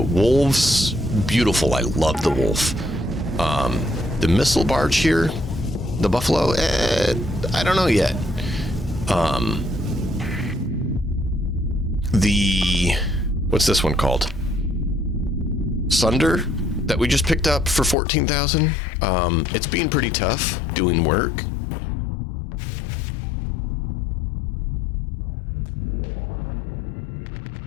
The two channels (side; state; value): right; drops out; at 17.9 s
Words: wolves, beautiful. I love the wolf. The missile barge here, the buffalo, I don't know yet. What's this one called? Sunder, that we just picked up for 14,000. It's been pretty tough doing work.